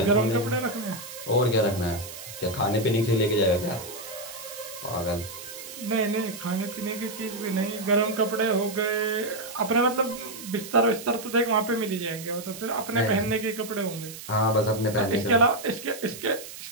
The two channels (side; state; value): right; noise; hiss, 13 dB below the sound